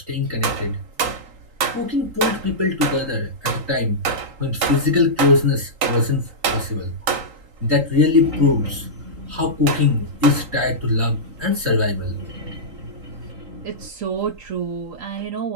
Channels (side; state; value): left; late; 3.8 ms